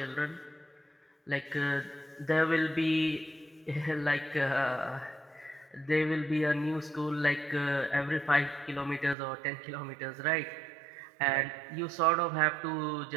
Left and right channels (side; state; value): left; drops out; at 9.2 s